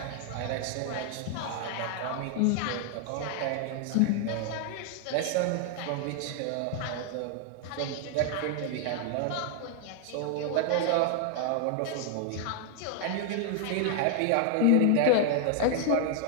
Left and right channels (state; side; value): different; both; correlation 0.00